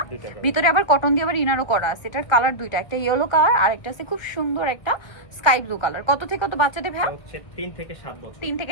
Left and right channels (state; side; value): late; right; 1.4 ms